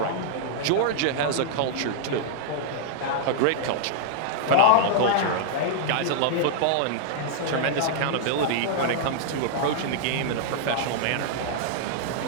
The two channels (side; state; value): both; different; correlation -0.01